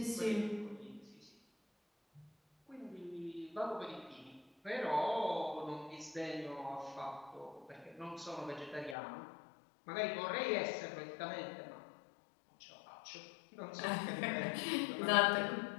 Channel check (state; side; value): drops out; right; at 9.0 s